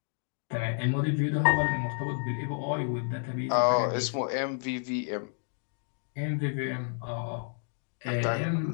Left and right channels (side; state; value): right; silent; 57 dB below the other